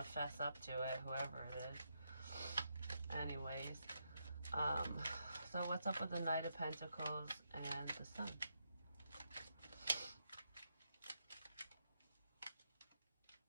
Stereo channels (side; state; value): both; inverted; correlation -0.81